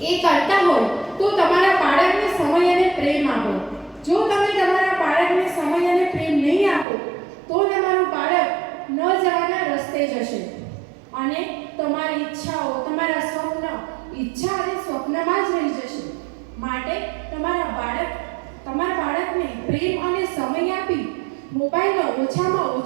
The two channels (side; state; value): left; drops out; at 6.9 s